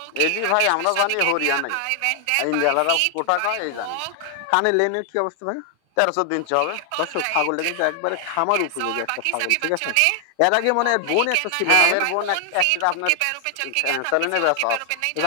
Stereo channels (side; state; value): both; different; correlation 0.00